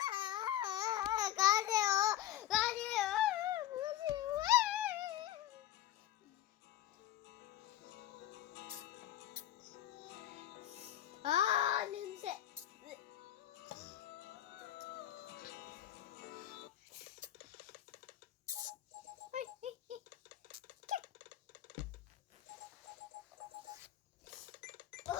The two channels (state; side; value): quieter; right; 12.6 dB